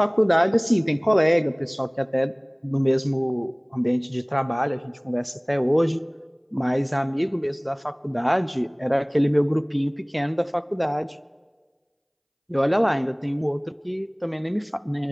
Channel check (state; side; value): identical; both; correlation 1.00